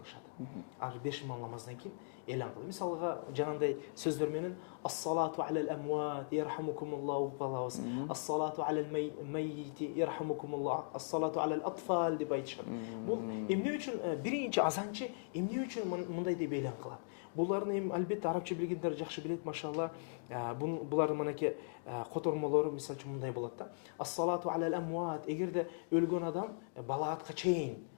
Ар 5 имам намаздан кийин элан кылат. Мисалга жанагындай сөздөр менен ас-салату алал амват ярхамукумуллаху калабыз. Ас-салату алал маййити ярхамукумуллах. Ас-салату алал атфал деп айтышат. Бул эмне үчүн биринчи азанчы эмне үчүн мындай деп элан кылат? Буларны эми албетте арабча билгендер жакшы билет, машалла. Булардын манеки котормолору мисалы үчүн мындай болот да. Ас-салату алал амват, эгерде өлгөн адам балагатка чейин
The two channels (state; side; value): silent; right; digital silence